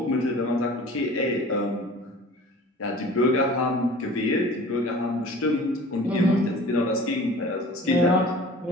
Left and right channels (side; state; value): both; normal; correlation 0.43